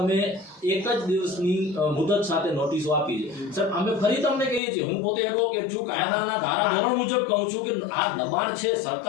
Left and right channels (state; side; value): drops out; right; at 4.6 s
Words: એક જ દિવસની મુદત સાથે નોટિસો આપી છે સર અમે ફરી તમને કહીએ છીએ હું પોતે એડવોકેટ છું કાયદાના ધારાધોરણ મુજબ કહું છું કે આ દબાણ છે